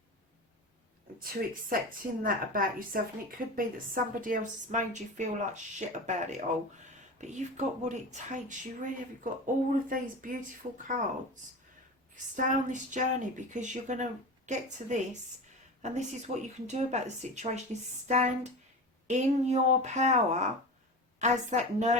to accepting that about yourself, and it could be that somebody else has made you feel like shit about it all. But you've got what it takes. You really have. You've got all of these beautiful cards stay on this journey, because you're going to get to this, and this is what you can do about the situation, is stand in your power as that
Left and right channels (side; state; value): both; normal; correlation 0.28